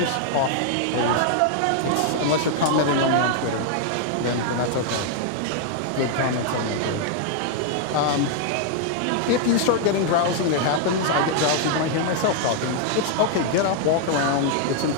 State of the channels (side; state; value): both; different; correlation 0.00